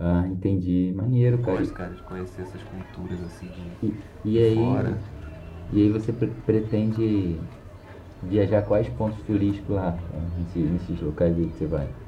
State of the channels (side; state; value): both; identical; correlation 1.00